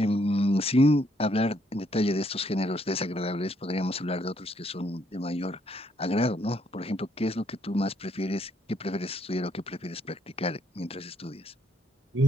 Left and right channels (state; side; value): normal; both; correlation 0.71